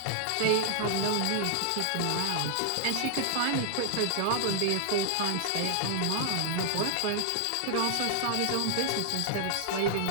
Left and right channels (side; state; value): both; different; correlation 0.00